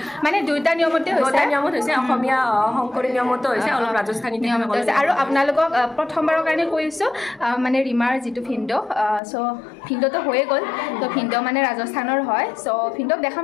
মানে দুইটা নিয়মতে হৈছে অসমীয়া শংকৰী নিয়মতো হৈছে অলপ ৰাজস্থানী নিয়মত হৈছে আৰু আপোনালোকক প্ৰথমবাৰৰ কাৰণে কৈছোঁ মানে ৰীমাৰ যিটো ভিন্দ' চ' ভিন্দ'টো হৈয়ে গ'ল ত' ভিন্দ' মানে ৰাজস্থানৰ হয় চ' ভিন্দ'ক দেখাম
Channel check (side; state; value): right; drops out; at 9.2 s